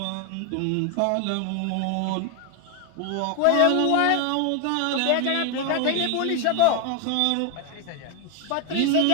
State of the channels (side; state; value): both; different; correlation 0.01